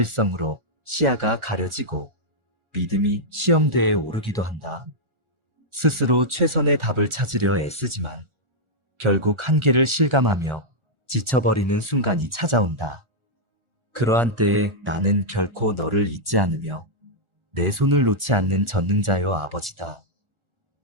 시야가 가려지고 믿음이 시험대에 오르기도 한다. 스스로 최선의 답을 찾으려 애쓰지만 결국 한계를 실감하며 지쳐버리는 순간이 찾아온다. 그러한 때에 나는 결코 너를 잊지 않으며 내 손을 놓지 않는 전능자요 아버지다.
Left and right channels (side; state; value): left; late; 1.4 ms